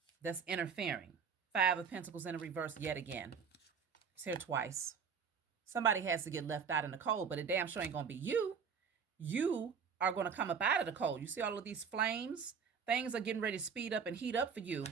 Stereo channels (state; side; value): quieter; left; 6.4 dB